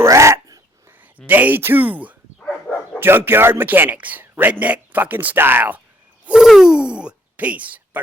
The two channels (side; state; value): both; normal; correlation 0.66